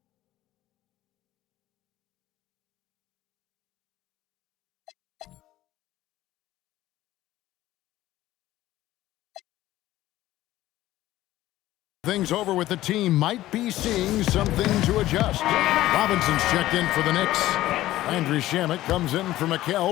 Things over with the team might be seeing something to adjust. Robinson's checked in for the Knicks. Andrew Shamet comes in for Mikal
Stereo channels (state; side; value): quieter; right; 15.3 dB